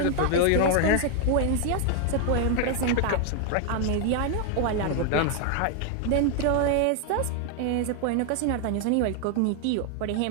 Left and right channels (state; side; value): different; both; correlation 0.00